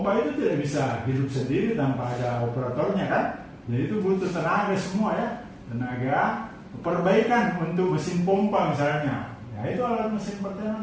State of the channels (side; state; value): both; identical; correlation 1.00